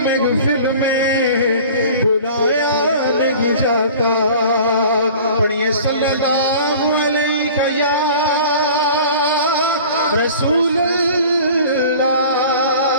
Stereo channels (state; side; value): inverted; both; correlation -0.43